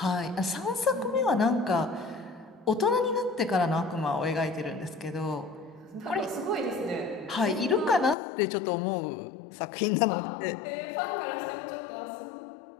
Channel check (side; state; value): right; drops out; at 8.2 s